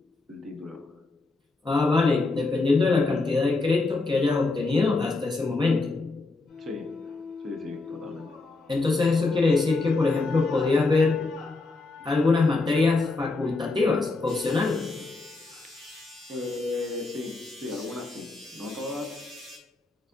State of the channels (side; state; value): right; quieter; 3.5 dB